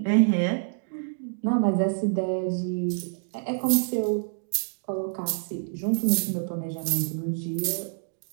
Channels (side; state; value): left; silent; digital silence